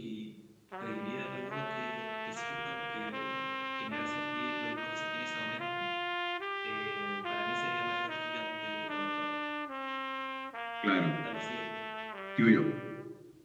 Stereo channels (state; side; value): identical; both; correlation 1.00